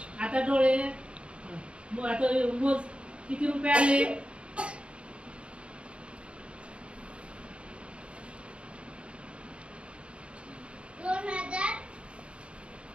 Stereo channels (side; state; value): left; late; 0.058 ms